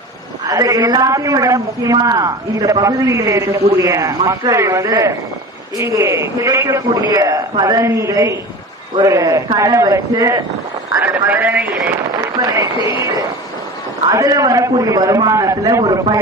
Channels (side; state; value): both; normal; correlation 0.33